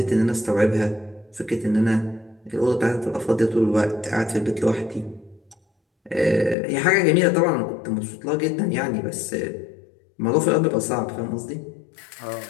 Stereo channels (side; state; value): right; drops out; at 6.6 s